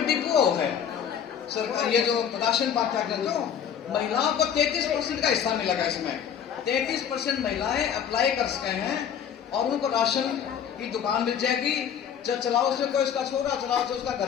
डिपो है सरकार, ये जो राशन बांटा कर लो, महिलाओं को 33% का हिस्सा मिलेगा। इसमें 33% महिलाएं अप्लाई कर सके हैं और उनको राशन की दुकान मिल जाएगी। चलाओ उसमें कोई उसका छोरा चलाओ तो उसका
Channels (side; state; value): right; quieter; 8.4 dB